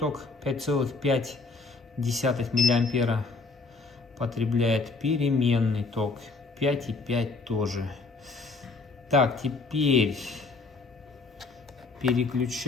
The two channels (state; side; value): quieter; right; 3.9 dB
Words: 5,5 миллиампера потребляет, переменный ток 5,5 тоже. Так, теперь